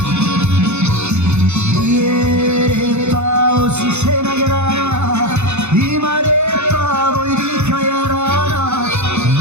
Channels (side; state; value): left; late; 0.82 ms